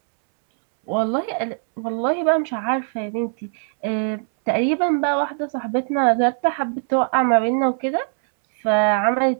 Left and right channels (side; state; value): left; silent; 65 dB below the other